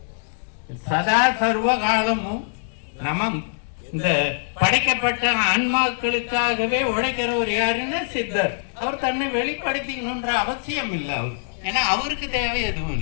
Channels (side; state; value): right; silent; 63 dB below the other